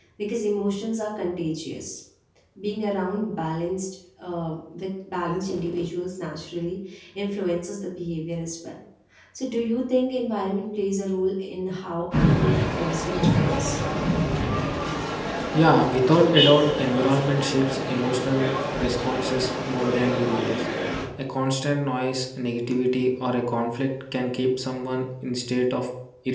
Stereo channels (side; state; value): both; identical; correlation 1.00